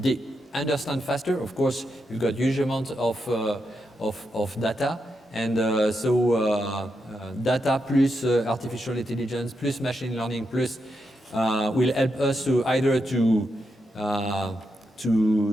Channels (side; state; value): both; normal; correlation 0.84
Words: Understand faster, of course, you've got huge amounts of data, and data plus artificial intelligence plus machine learning plus will help us to either to